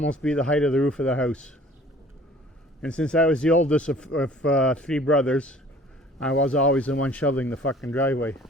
be the height of the roof of the house. And since I was the oldest of three brothers, I was always the one shoveling the fucking driveway.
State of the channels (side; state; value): both; normal; correlation 0.51